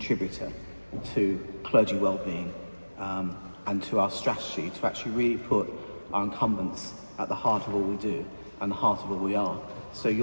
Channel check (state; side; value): inverted; both; correlation -1.00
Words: to clergy well-being and to our strategy to actually really put our incumbents at the heart of all we do and the heart of all we are. So